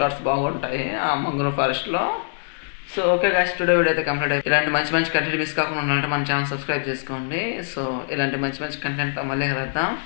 బాగుంటాయి ఆ మంగ్రూ ఫారెస్ట్లో. So okay guys, today video అయితే కంప్లీట్ అయిపోయింది. ఇలాంటి మంచి కంటెంట్ మిస్ కాకుండా ఉండాలంటే మన ఛానల్ సబ్స్క్రైబ్ చేసుకోండి. సో ఇలాంటి మంచి కంటెంట్తో మళ్ళీ కలుద్దాం.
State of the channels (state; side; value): silent; right; digital silence